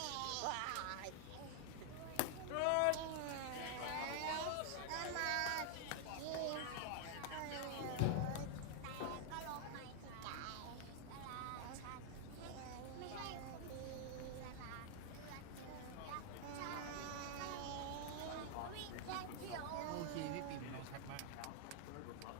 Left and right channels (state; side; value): different; both; correlation 0.00